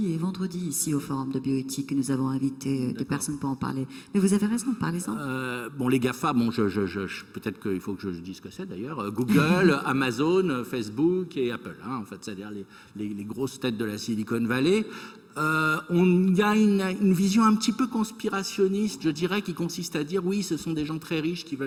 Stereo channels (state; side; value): identical; both; correlation 1.00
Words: et vendredi ici au Forum de bioéthique. Nous avons invité des personnes pour en parler. Mais vous avez raison, parlez-en. Bon, les GAFA, bon, peut-être qu'il faut que je dise ce que c'est d'ailleurs. Google, Amazon, Facebook et Apple, en fait, c'est-à-dire les grosses têtes de la Silicon Valley. On y a une vision un petit peu conspirationniste, je dirais, qui consiste à dire oui, ce sont des gens très riches qui